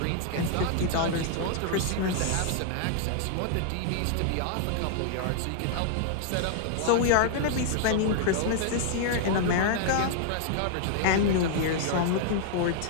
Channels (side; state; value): both; different; correlation -0.01